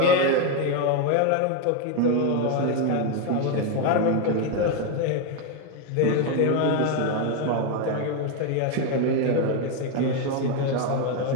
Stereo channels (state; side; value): different; both; correlation 0.02